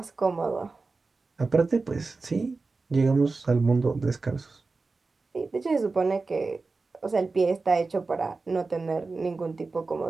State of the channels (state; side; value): quieter; left; 3.9 dB